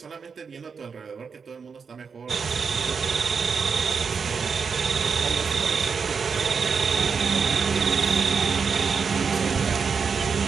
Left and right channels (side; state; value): left; quieter; 5.7 dB